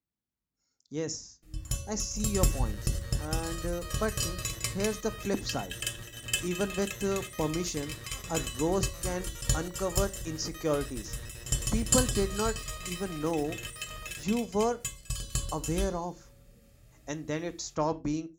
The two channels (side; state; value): both; identical; correlation 1.00